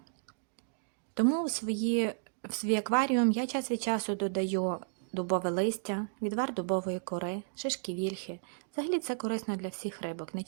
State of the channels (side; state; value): left; silent; digital silence